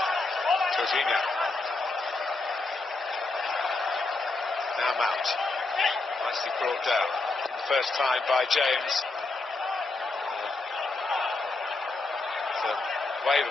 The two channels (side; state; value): right; quieter; 3.4 dB